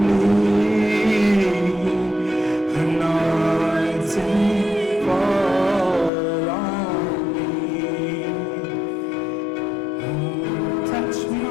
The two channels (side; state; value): right; drops out; at 6.1 s